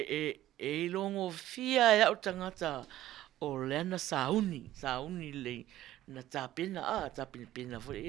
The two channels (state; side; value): quieter; left; 14.2 dB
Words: longo fia e au tangata o leana sauni le na tapena pena